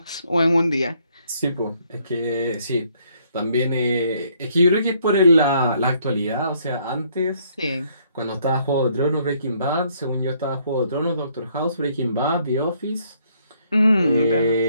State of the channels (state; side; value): inverted; both; correlation -0.68